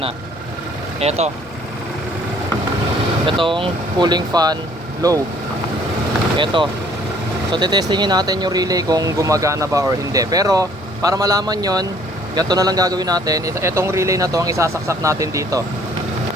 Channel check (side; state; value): both; normal; correlation 0.59